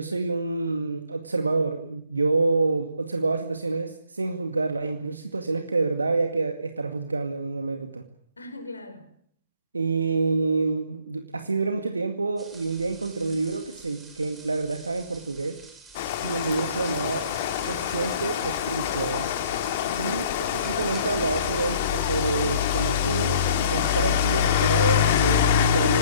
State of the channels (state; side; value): inverted; both; correlation -0.60